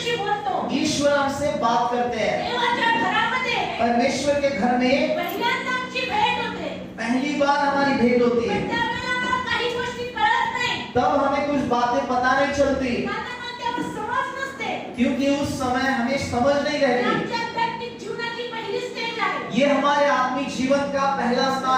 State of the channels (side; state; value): both; identical; correlation 1.00